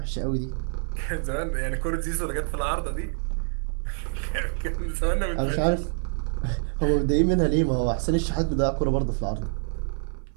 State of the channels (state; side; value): silent; left; 58 dB below the other